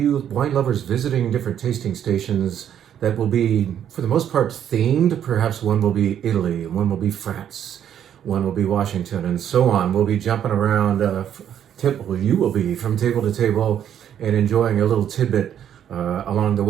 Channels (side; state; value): left; quieter; 9.7 dB